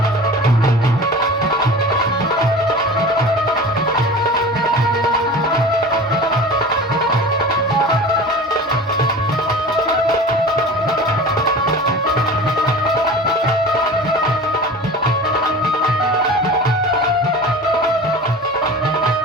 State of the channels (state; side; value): normal; both; correlation 0.36